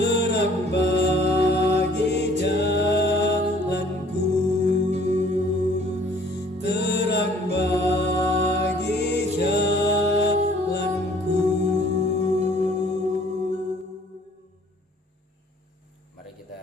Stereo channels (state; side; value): normal; both; correlation 0.56